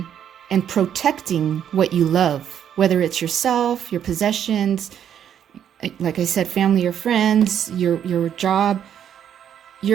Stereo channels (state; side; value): quieter; left; 9.4 dB